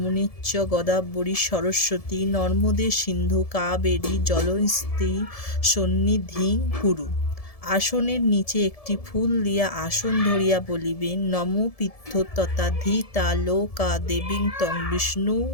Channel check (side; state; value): right; late; 1.7 ms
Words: গোদাবরী সরস্বতী নর্মদে সিন্ধু কাবেরী জলস্মি সন্নিধিং কুরু। আসনের নিচে একটি ফুল দিয়া আসন ধরিয়া বলিবেন নমো পিত্থ তথা ধিতা লোকা দেবীং তং বিষ্ণু